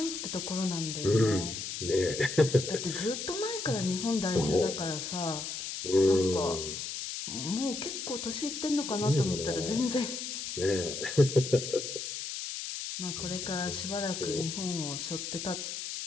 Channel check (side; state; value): left; noise; hiss, 5 dB below the sound